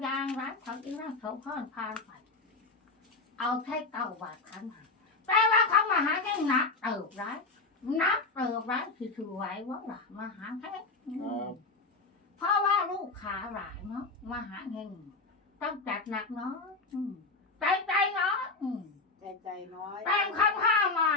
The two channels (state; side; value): quieter; right; 3.7 dB